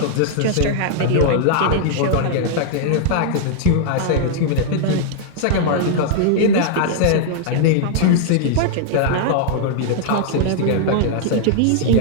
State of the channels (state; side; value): different; both; correlation -0.01